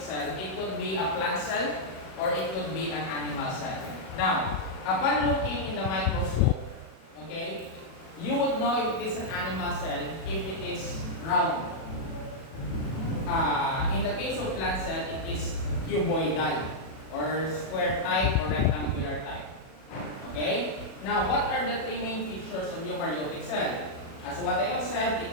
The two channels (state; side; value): late; right; 37 ms